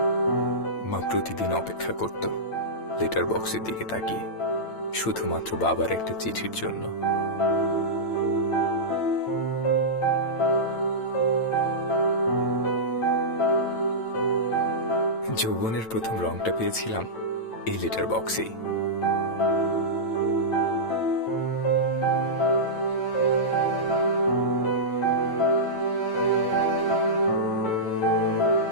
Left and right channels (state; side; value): late; right; 9.0 ms